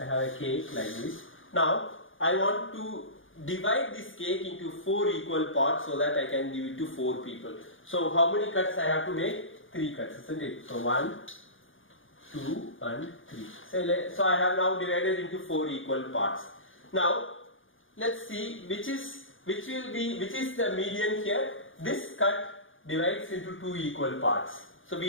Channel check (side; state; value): right; late; 0.58 ms